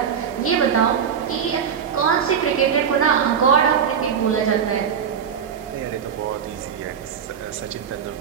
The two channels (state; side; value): quieter; left; 7.5 dB